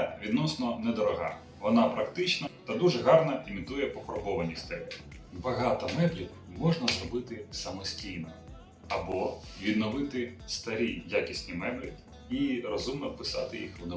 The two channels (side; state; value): both; identical; correlation 1.00